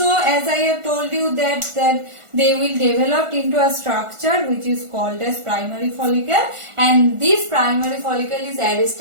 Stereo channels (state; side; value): late; left; 1.4 ms